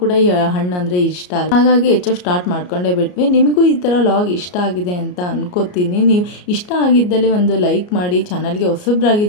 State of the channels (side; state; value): right; late; 33 ms